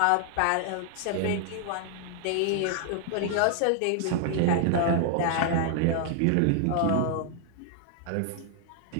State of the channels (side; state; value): both; different; correlation 0.00